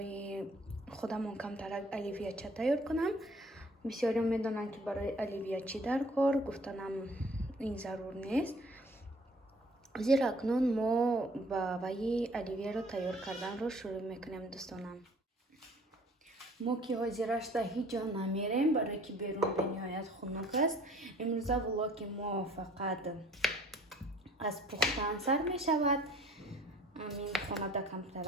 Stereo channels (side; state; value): both; normal; correlation 0.55